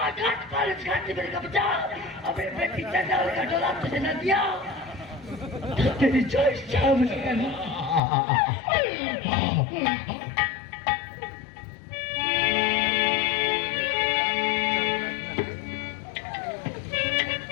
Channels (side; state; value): right; drops out; at 8.0 s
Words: घाट पर इस घाट से मेरे का बचा अपने बेटी चंदा का डोला तुझे न दिया तो तेरी चॉइस क्या मुझे